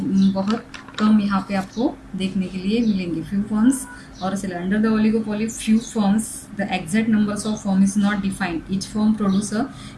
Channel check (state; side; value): identical; both; correlation 1.00